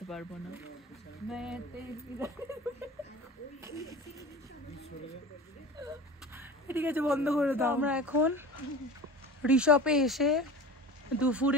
পারবো না। ঠিক আছে, বন্ধ করে দাও। আমরা এখন ঋষভে এসে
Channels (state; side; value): normal; both; correlation 0.35